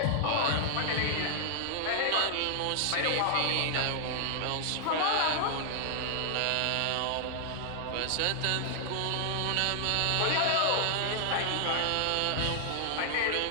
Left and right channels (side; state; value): both; different; correlation 0.00